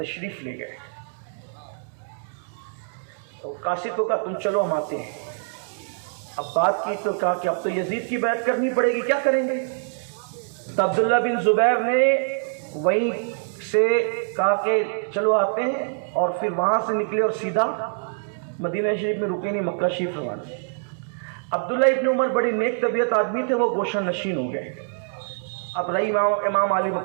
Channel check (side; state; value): left; silent; digital silence